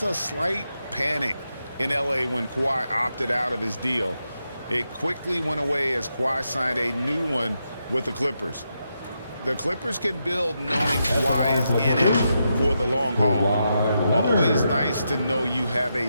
a slight panic in L.A. when Kawhi opted out of his deal. It quickly went away as Kawhi signed a new one with the Clippers. The Clippers can build knowing Kawhi is in it for the long haul. Always nice to know you have a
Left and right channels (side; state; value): both; inverted; correlation -0.84